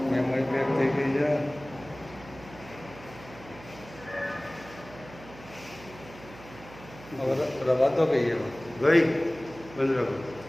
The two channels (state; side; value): noise; right; hum, 18 dB below the sound